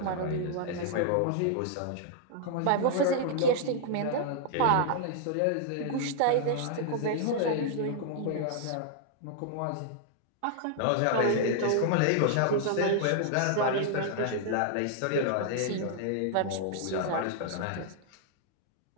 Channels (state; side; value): different; both; correlation -0.01